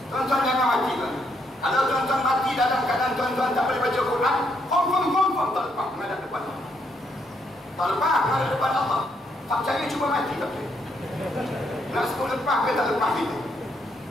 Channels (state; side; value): normal; both; correlation 0.75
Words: Tuan-tuan jangan mati tuan. Kalau tuan-tuan mati dalam keadaan tuan-tuan tak boleh baca Quran, confirm tak lepas menghadap depan Allah. Tak lepas menghadap depan Allah. Tak percaya cuba mati tak percaya. Nak sebut lepas ke tak lepas itu.